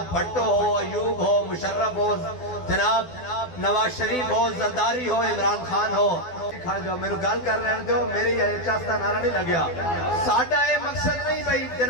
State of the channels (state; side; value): late; right; 12 ms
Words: بھٹو ہو، ایوب ہو، مشرف ہو، جناب نواز شریف ہو، زرداری ہو، عمران خان ہو، کھڑ جاؤ میں نے گل کر رہے ہیں جو میری چاستہ نعرہ نہیں لگیا. ساڑھا اے مقصد نہیں بھئی